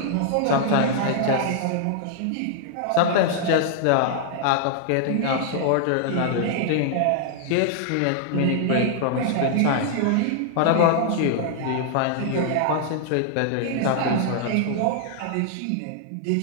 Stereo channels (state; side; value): different; both; correlation 0.00